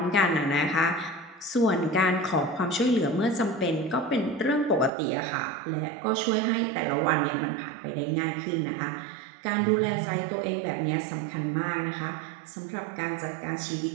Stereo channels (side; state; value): left; drops out; at 4.9 s